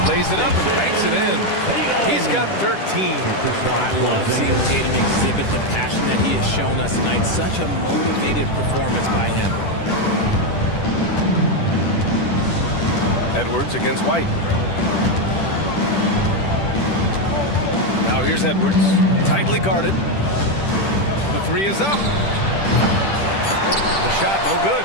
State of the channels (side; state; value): right; late; 10 ms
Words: Lays it up and banks it in. He's got 13. I love seeing Tatum exhibit the passion that he has shown us tonight. Such a motivated performance by him. Edwards against White. Now here's Edwards, tightly guarded. The 3 is up. The shot no good.